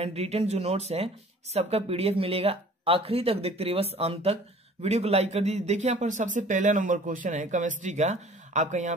रिटन जो नोट्स है सबका पीडीएफ मिलेगा। आखिरी तक देखते रहिए, बस अंत तक। वीडियो को लाइक कर दीजिए। देखिए यहाँ पर सबसे पहला नंबर क्वेश्चन है केमिस्ट्री का आपका, यहाँ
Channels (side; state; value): both; normal; correlation 0.49